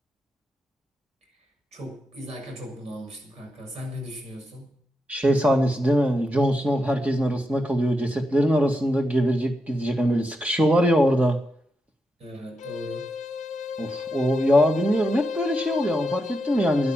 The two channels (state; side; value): normal; both; correlation 0.85